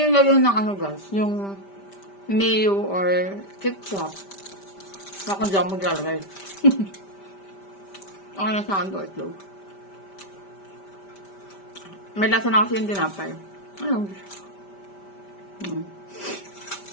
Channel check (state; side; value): late; right; 5.1 ms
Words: yung lagyan ng ano guys, yung mayo or ketchup. Ako dyan maglalagay. Ako na sa ando itlog. May lasa na kasi yung tinapay. Ayun.